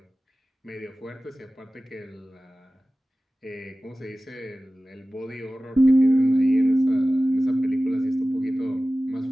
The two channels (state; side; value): normal; both; correlation 0.96